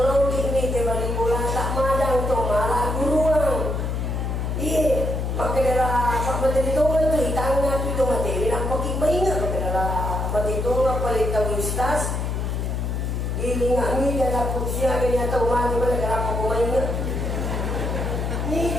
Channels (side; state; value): left; noise; hum, 1 dB below the sound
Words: ni tiba ni bola tak mada untuk malah guruan. Iya, maka dalam apa materi tu kan tu itangnya tu materi nampak ingat maka dalam materi tu apa lita ustaz. Gilingan ni dalam kursia ni atau mati mana dalam apa ingat.